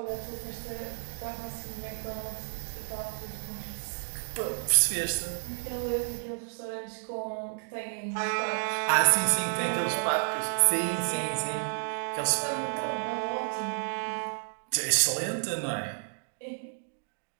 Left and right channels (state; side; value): silent; left; digital silence